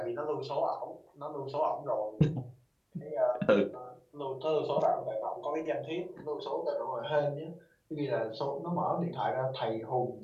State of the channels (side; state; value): both; identical; correlation 1.00